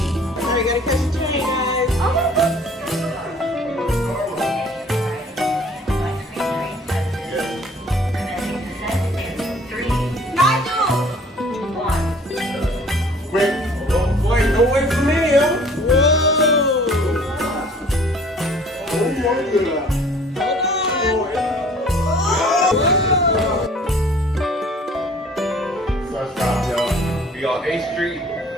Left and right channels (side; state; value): both; normal; correlation 0.52